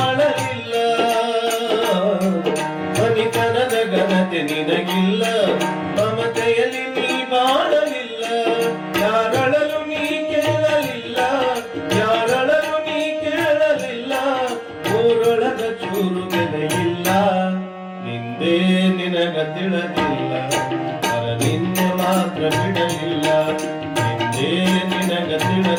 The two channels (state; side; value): identical; both; correlation 1.00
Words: ಮನಿತನದ ಘನತೆ ನಿನಗಿಲ್ಲ, ಮಮತೆಯಲ್ಲಿ ನೀ ಬಾಳಲಿಲ್ಲ. ಯಾರಳಲು ನೀ ಕೇಳಲಿಲ್ಲ, ಯಾರಳಲು ನೀ ಕೇಳಲಿಲ್ಲ, ಊರೊಳಗ ಚೂರು ಬೆಲೆಯಿಲ್ಲ. ನಿಂದೇ ನಿನಗ ತಿಳಿದಿಲ್ಲ, ಪರನಿಂದೆ ಮಾತ್ರ ಬಿಡಲಿಲ್ಲ. ನಿಂದೇ ನಿನಗ